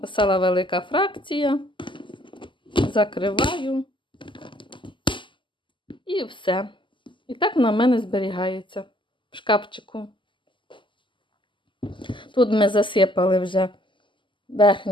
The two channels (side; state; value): right; late; 0.24 ms